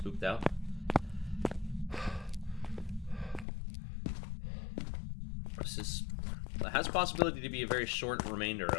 spooked out. This has possibility to be a very short remainder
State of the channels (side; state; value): right; drops out; at 3.5 s